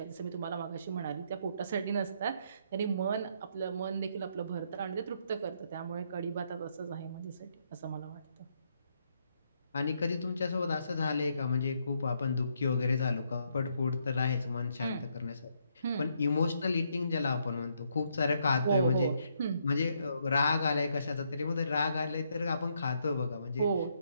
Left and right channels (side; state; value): both; inverted; correlation -0.74